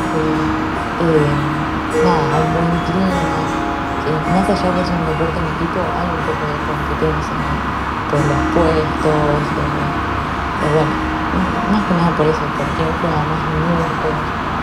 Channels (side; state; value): both; identical; correlation 1.00